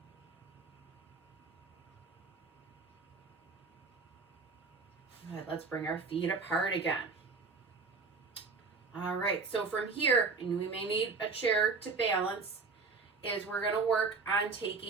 Good, let's bring our feet apart again. All right, so from here, and we may need a chair to balance, is we're gonna work on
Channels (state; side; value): quieter; left; 4.5 dB